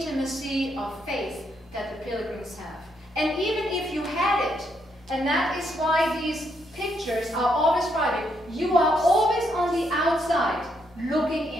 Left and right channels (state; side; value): normal; both; correlation 0.76